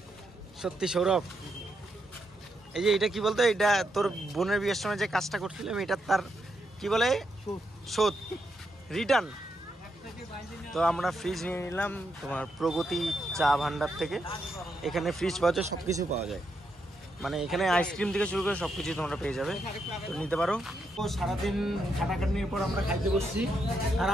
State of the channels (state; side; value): normal; both; correlation 0.81